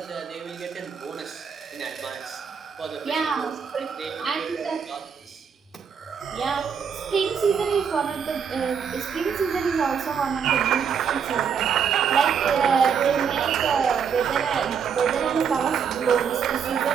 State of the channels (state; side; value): quieter; left; 7.0 dB